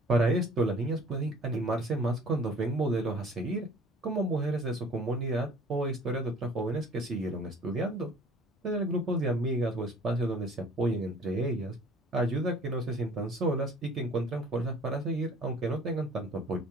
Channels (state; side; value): normal; both; correlation 0.51